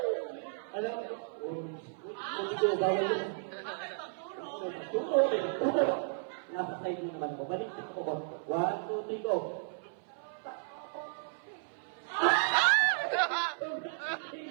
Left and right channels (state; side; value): silent; left; 55 dB below the other